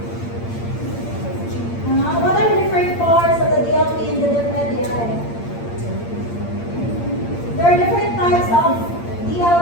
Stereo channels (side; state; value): right; late; 8.7 ms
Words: What are the different parts of the DLP in the DepEd? There are different types of